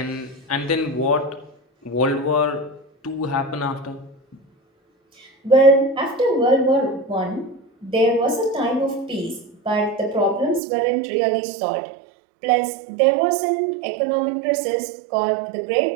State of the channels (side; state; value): left; drops out; at 10.6 s